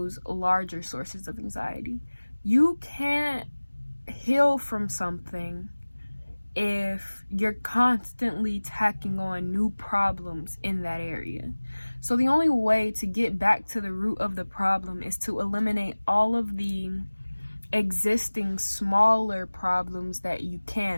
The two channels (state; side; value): inverted; both; correlation -1.00